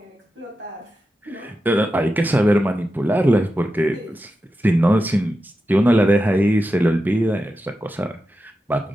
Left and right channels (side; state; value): both; normal; correlation 0.90